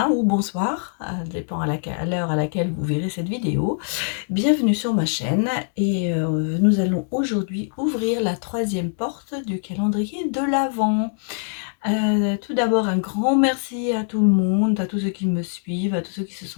ou bonsoir, dépend à l'heure à laquelle vous verrez cette vidéo. Bienvenue sur ma chaîne et nous allons aujourd'hui ouvrir la troisième porte du calendrier de l'Avent. Tout d'abord, un grand merci à tout le monde, à tous ceux qui me suivent, à tous ceux qui se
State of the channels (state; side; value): silent; right; 64 dB below the other